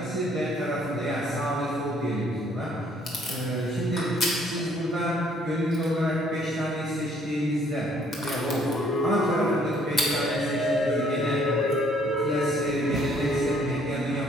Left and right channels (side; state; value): both; normal; correlation 0.63